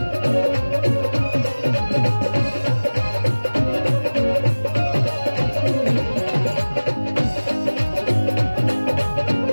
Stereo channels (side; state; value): both; inverted; correlation -1.00